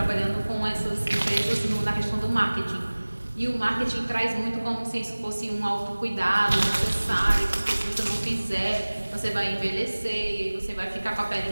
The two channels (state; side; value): inverted; both; correlation -1.00